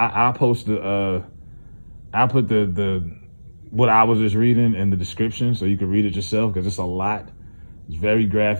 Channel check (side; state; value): both; inverted; correlation -1.00